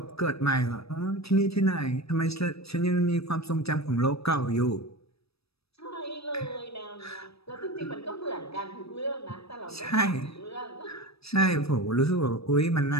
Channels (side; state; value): right; late; 0.78 ms